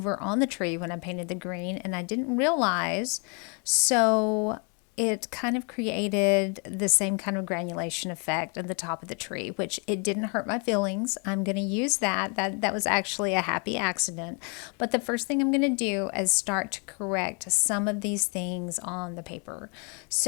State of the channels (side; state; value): right; quieter; 36.6 dB